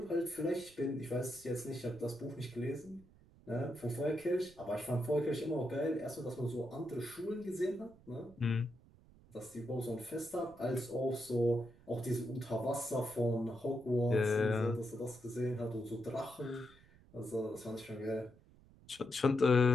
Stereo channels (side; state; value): right; noise; rumble, 25 dB below the sound